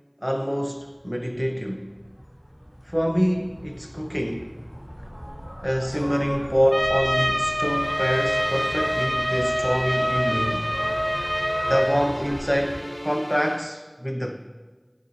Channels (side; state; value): both; identical; correlation 1.00